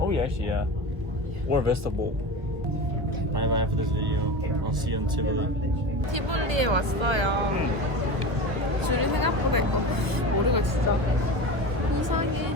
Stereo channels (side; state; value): left; late; 1.1 ms